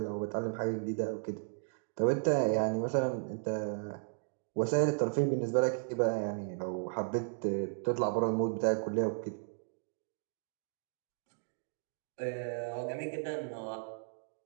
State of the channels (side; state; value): left; silent; digital silence